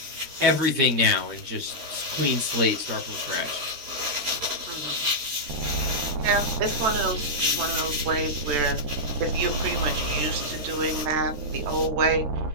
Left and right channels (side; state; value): left; late; 13 ms